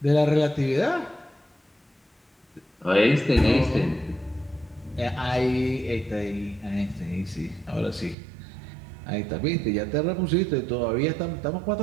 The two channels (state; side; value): drops out; left; at 8.2 s